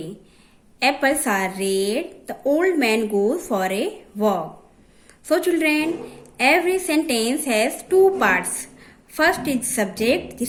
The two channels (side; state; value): both; identical; correlation 1.00